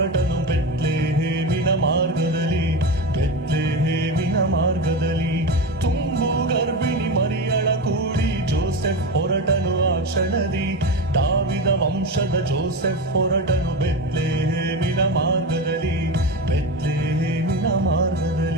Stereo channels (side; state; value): both; normal; correlation 0.21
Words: ಬೆತ್ಲೆಹೇಮಿನ ಮಾರ್ಗದಲ್ಲಿ, ಬೆತ್ಲೆಹೇಮಿನ ಮಾರ್ಗದಲ್ಲಿ. ತುಂಬು ಗರ್ಭಿಣಿ ಮರಿಯಳ ಕೂಡಿ ಜೋಸೆಫ್ ಹೊರಟನು ಆ ಕ್ಷಣದಿ. ದಾವಿದ ವಂಶದ ಜೋಸೆಫ್ ಹೊರಟನು ಬೆತ್ಲೆಹೇಮಿನ ಮಾರ್ಗದಲ್ಲಿ, ಬೆತ್ಲೆಹೇಮಿನ